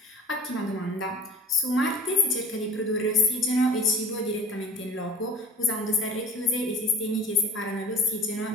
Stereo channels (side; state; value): both; normal; correlation 0.42